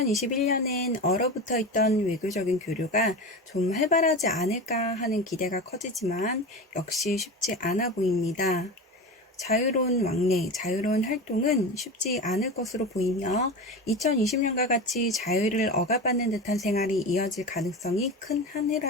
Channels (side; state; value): both; normal; correlation 0.26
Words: 얼어붙어 있던 외교적인 교류가 좀 활발하지 않을까 하는 기대가 커지지만 역시 쉽지 않아 보입니다. 자유로운 왕래, 자유로운 활동은 쉽지 않을 것으로 보이며 2020년과 같이 자유를 억압받는 듯한 생활이 이어질 가능성이 큰 한